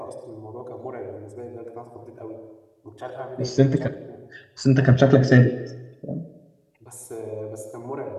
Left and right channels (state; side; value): identical; both; correlation 1.00